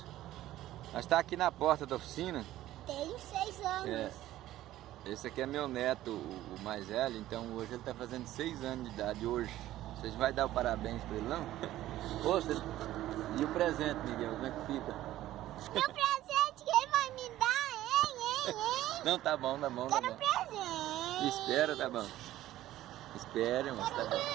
Nós estamos aqui na porta da oficina. Tenho 6 anos. Esse aqui é meu neto, o mais velho, então hoje ele está fazendo 6 anos de idade hoje. Vocês vão dar o parabéns para ele, não? E o presente, Miguel, como é que fica? Meu presente, quem vai me dar, hein? Não, tá bom, tá bom, tá Quero bom. presente. Espera, tá bom. Espere, mas tá Quero bom.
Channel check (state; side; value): quieter; left; 14.4 dB